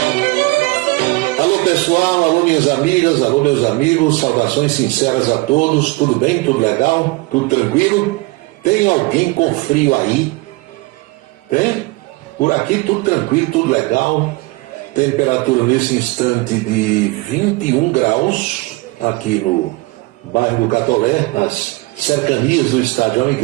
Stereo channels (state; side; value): quieter; left; 23.9 dB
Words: Alô pessoal, alô minhas amigas, alô meus amigos, saudações sinceras a todos, tudo bem, tudo legal, tudo tranquilo? Tem alguém com frio aí? Tem? Por aqui tudo tranquilo, tudo legal. Temperatura nesse instante de 21 graus, aqui no bairro do Catolé, nas cercanias do Estádio